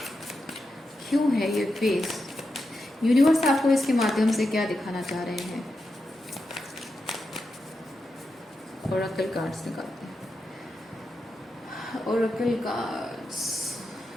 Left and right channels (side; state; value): both; normal; correlation 0.88